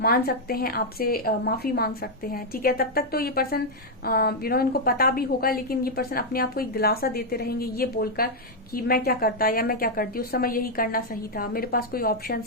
मान सकते हैं, आपसे माफी मांग सकते हैं, ठीक है। तब तक तो ये पर्सन इनको पता भी होगा, लेकिन ये पर्सन अपने आप को एक दिलासा देते रहेंगे ये बोलकर कि मैं क्या करता या मैं क्या करती, उस समय यही करना सही था, मेरे पास कोई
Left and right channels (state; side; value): normal; both; correlation -0.02